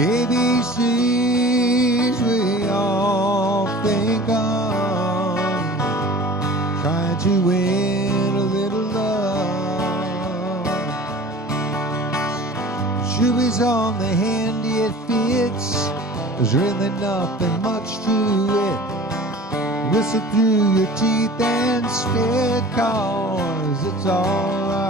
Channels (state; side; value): normal; both; correlation 0.42